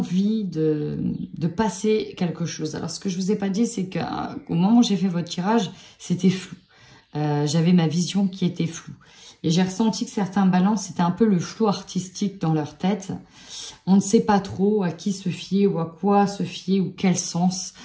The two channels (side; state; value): both; identical; correlation 1.00